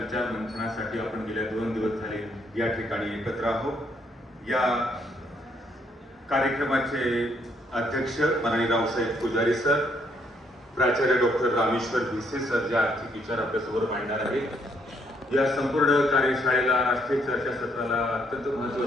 मंथनासाठी आपण गेल्या 2 दिवस झाले या ठिकाणी एकत्र आहोत। या कार्यक्रमाचे अध्यक्ष माननीय रावसाहेब पुजारी सर, प्राचार्य डॉक्टर रामेश्वर भिसे सर जे आर्थिक विचार आपल्यासमोर मांडणार आहेत। या संपूर्ण कार्यशाळेला राष्ट्रीय चर्चासत्राला अत्यंत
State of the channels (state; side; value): normal; both; correlation 0.71